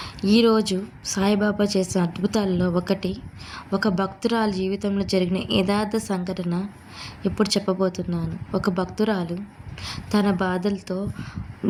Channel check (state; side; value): identical; both; correlation 1.00